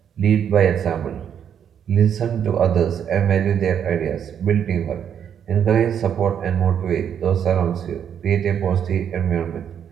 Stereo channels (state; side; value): quieter; left; 8.6 dB